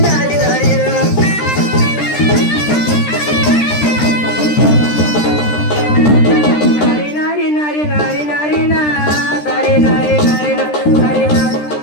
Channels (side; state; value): right; late; 13 ms